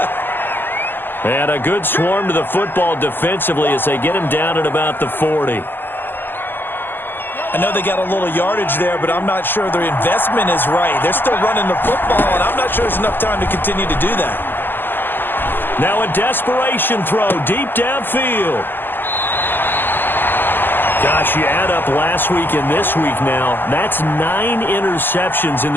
And a good swarm to the football defensively as they get him down at about the 40. I know they got a little yardage there, but I'm not sure their investment is right. They're still running the football, and I'm not sure there's enough time to continue to do that. Now a desperation throw deep downfield. Gosh, you add up last week and this week now, that's 9 interceptions in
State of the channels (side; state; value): right; late; 0.093 ms